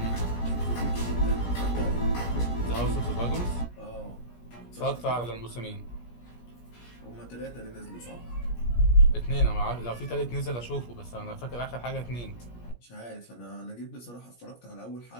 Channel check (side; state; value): right; late; 17 ms